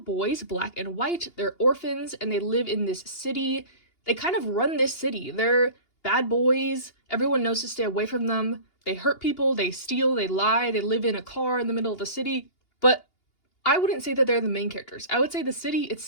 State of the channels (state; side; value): late; right; 2.8 ms